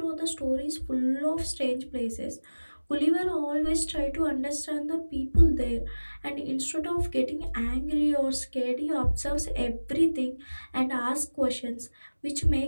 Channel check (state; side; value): inverted; both; correlation -1.00